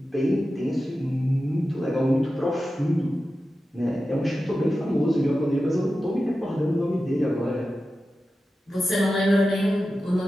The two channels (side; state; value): both; normal; correlation 0.93